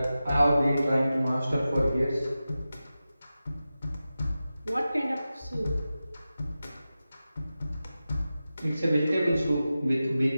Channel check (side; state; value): both; inverted; correlation -0.94